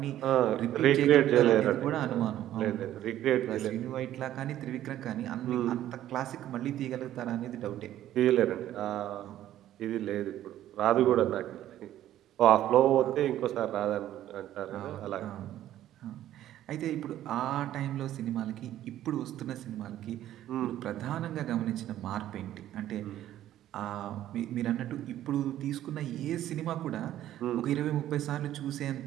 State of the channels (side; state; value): left; quieter; 12.7 dB